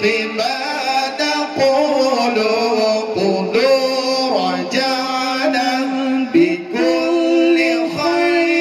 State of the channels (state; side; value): identical; both; correlation 1.00